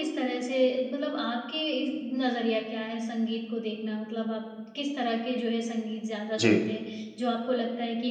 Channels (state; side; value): identical; both; correlation 1.00